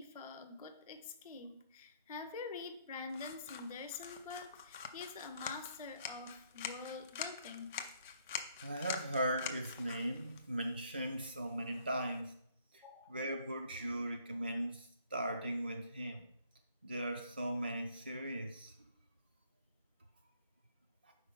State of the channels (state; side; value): inverted; both; correlation -0.66